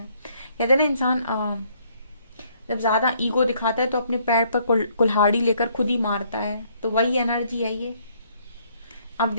कहते हैं ना, इंसान जब ज्यादा ईगो दिखाता है तो अपने पैर पर कुल्हाड़ी लेकर खुद ही मारता है, तो वही एनर्जी है ये। आप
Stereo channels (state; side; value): inverted; both; correlation -0.66